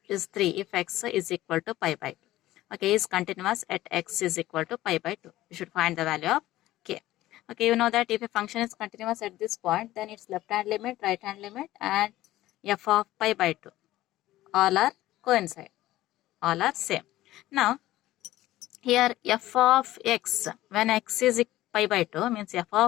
is 3 if x is equal to pi by 2. Okay, is continuous at x is equal to pi by 2. You should find the value of k. Okay, you know that if a function is continuous at this point, then its left hand limit, right hand limit and f of pi by 2 all are coincide, all are same. Now here f of x, when x is pi by 2 means f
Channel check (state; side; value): quieter; right; 15.7 dB